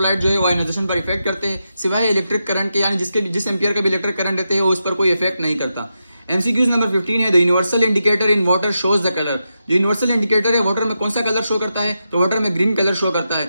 जो है वो आयोनाइजेशन पर इफेक्ट करते हैं, सिवाय इलेक्ट्रिक करंट के, यानी जिस एम्पियर का भी इलेक्ट्रिक करंट रहते हैं वो उस पर कोई इफेक्ट नहीं करता। एमसीक्यूज नंबर 15 है the universal indicator in water shows the colour. जो यूनिवर्सल इंडिकेटर है वाटर में कौन सा कलर शो करता है, तो वाटर में ग्रीन कलर शो करता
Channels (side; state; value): both; inverted; correlation -0.87